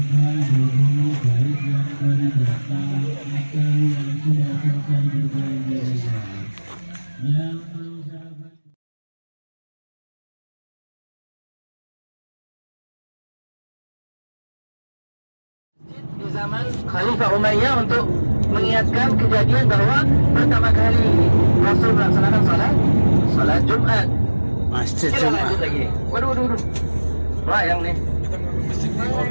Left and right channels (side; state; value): both; inverted; correlation -1.00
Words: dulu baik yang baru datang atau yang sudah selesai berbelanja. Yang mau sahabat di zaman Khalifah Umayyah untuk mengingatkan kejadian bahwa pertama kali Rasul melaksanakan salat Jumat. Masjid Kita lanjut lagi. Waduh. Layang nih.